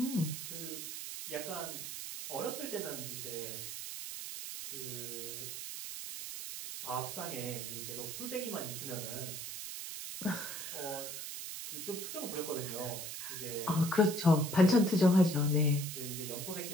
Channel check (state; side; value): noise; right; hiss, 7 dB below the sound